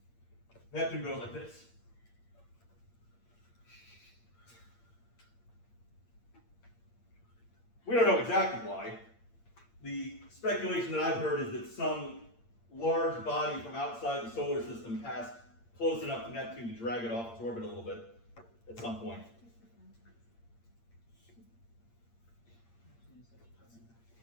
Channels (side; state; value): right; late; 8.7 ms